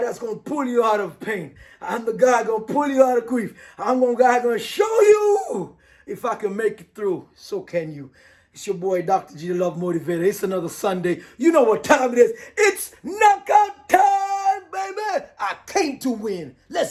that's going to pull you out of pain. I'm the guy going to pull you out of grief. I'm the guy going to show you if I can make it through. So can you. It's your boy, Dr. G, the Love Motivator. It's another Sunday. You know what time it is. It's knockout time, baby. I came to win.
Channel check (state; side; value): identical; both; correlation 1.00